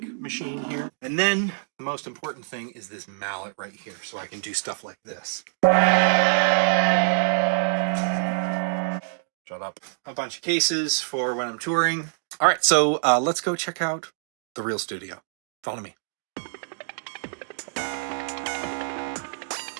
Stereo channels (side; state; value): left; silent; digital silence